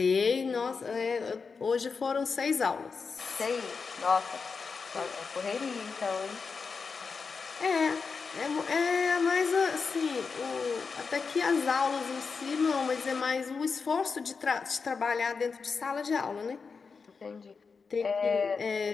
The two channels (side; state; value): right; quieter; 5.1 dB